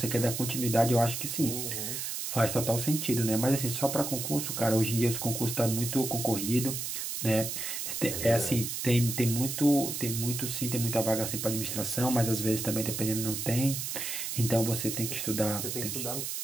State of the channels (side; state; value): right; noise; hiss, 4 dB below the sound